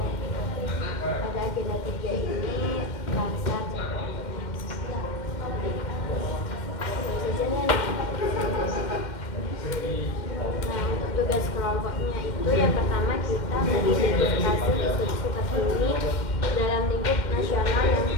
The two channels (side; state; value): right; late; 2.1 ms